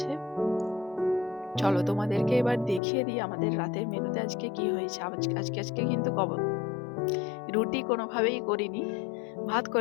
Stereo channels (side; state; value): right; drops out; at 2.8 s